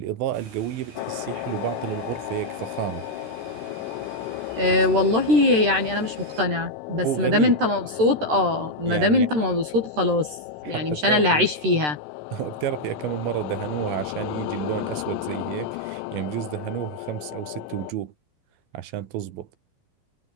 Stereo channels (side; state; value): left; late; 13 ms